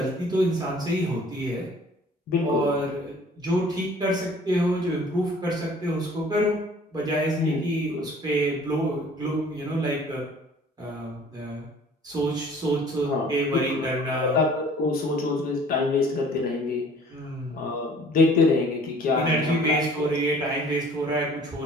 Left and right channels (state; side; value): normal; both; correlation 0.52